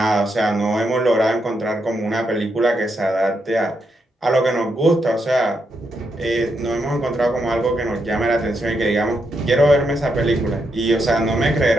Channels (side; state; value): both; normal; correlation 0.81